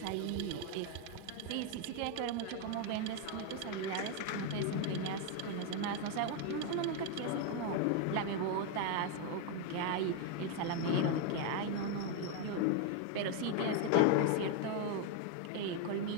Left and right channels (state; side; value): different; both; correlation 0.01